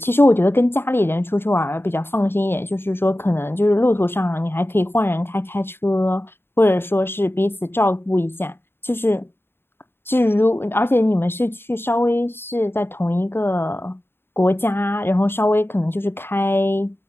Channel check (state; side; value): late; right; 0.11 ms